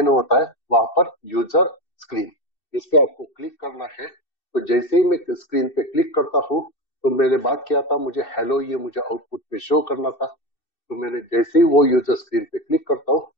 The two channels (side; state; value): right; late; 2.6 ms